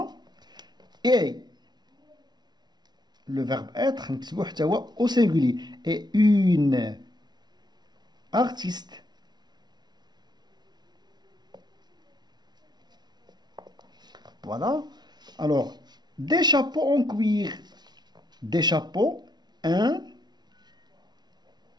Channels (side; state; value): left; late; 0.20 ms